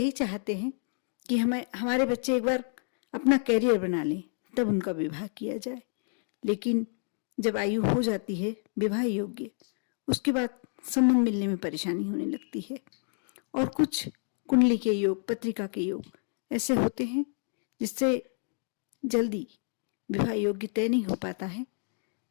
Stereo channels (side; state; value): right; silent; 55 dB below the other